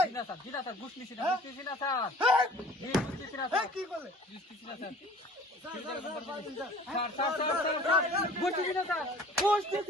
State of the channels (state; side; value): normal; both; correlation 0.48